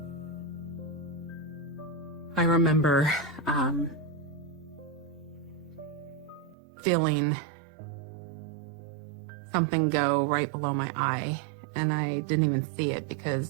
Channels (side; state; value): left; drops out; at 6.6 s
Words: I remember feeling something go right below my eye, and I didn't even see it